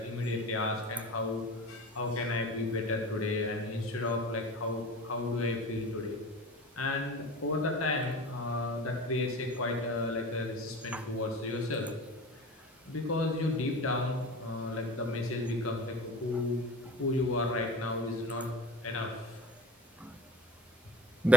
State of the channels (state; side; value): normal; both; correlation 0.35